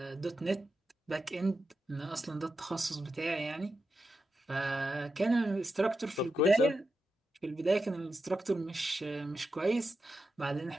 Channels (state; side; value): normal; both; correlation 0.88